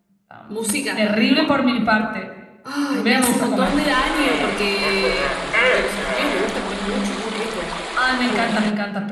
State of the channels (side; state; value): both; identical; correlation 1.00